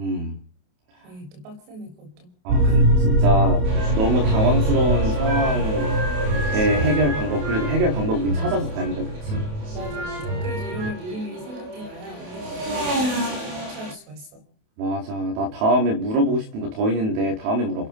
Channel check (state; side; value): late; left; 28 ms